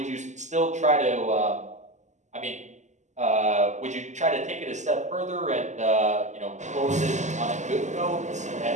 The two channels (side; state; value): left; late; 0.34 ms